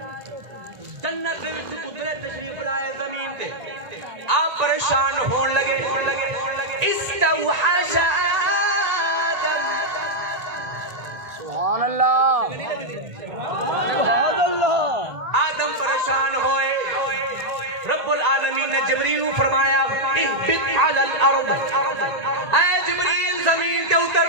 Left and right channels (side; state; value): left; late; 1.9 ms